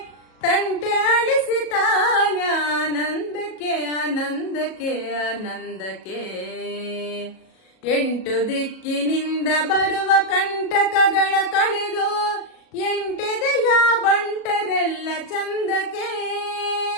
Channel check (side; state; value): right; late; 37 ms